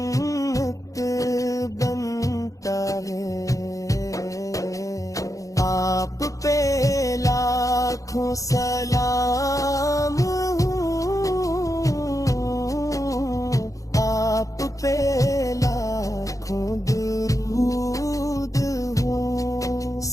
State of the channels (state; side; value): late; right; 0.16 ms